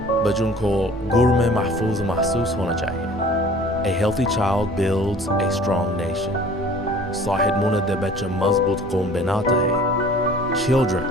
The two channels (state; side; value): noise; left; hum, 19 dB below the sound